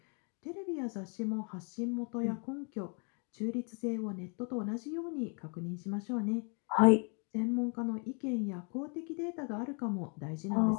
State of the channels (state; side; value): quieter; right; 38.2 dB